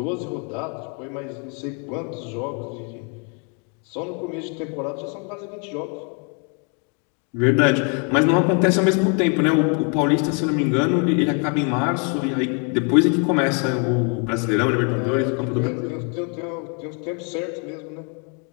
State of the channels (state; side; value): quieter; right; 37.5 dB